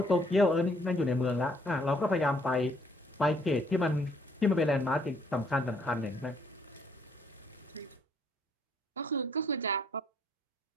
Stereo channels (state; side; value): normal; both; correlation 0.65